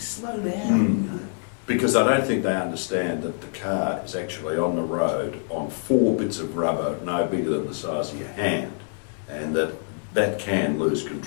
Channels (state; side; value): silent; right; 62 dB below the other